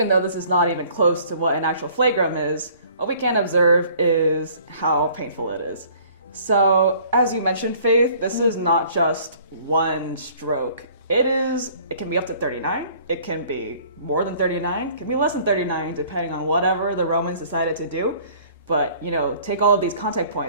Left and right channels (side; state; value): both; inverted; correlation -0.54